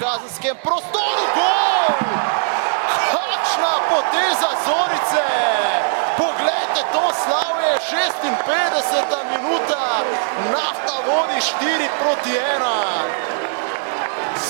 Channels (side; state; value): left; silent; digital silence